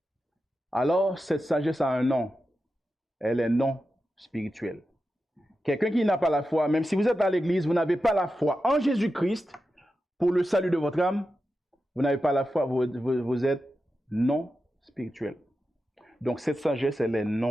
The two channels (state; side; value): normal; both; correlation 0.90